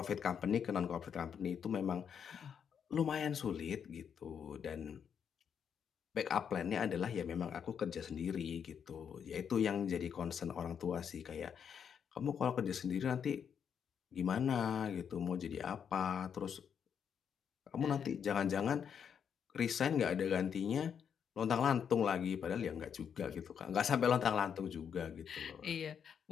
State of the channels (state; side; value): quieter; right; 7.6 dB